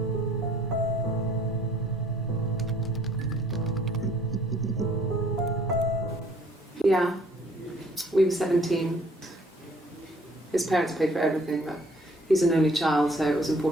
Yeah, we were 17. His parents paid for everything, but he's an only child, so it was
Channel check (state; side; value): normal; both; correlation 0.59